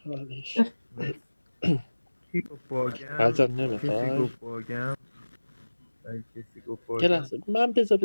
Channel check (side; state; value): both; inverted; correlation -1.00